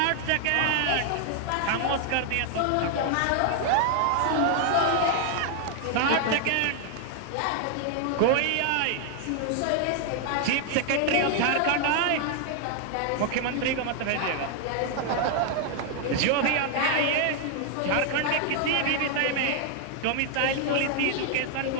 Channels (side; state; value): both; different; correlation 0.00